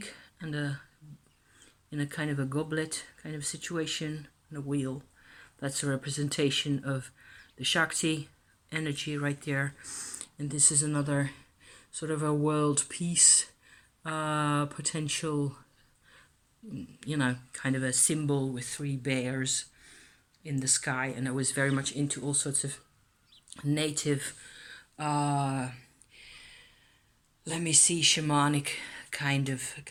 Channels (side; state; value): both; identical; correlation 1.00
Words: and in a kind of a goblet kind of situation and a wheel. That's a representation of the Shakti energy right there. And this is another sort of a world peace potential, you know, kind of a symbol with 3 bears in the sky. And I was very much into all sorts of native, shamanic kind